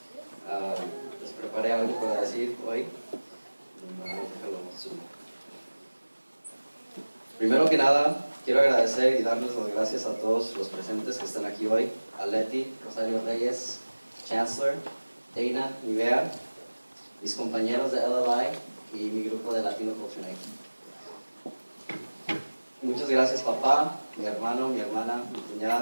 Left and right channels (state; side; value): inverted; both; correlation -1.00